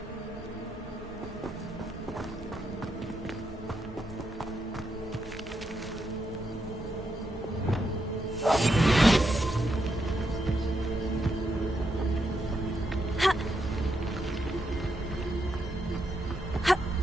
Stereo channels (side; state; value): both; normal; correlation 0.81